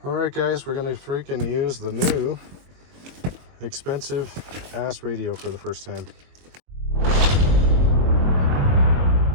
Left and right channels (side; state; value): left; late; 22 ms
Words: Alright guys, we're gonna freaking use the new expensive ass radio for the first time.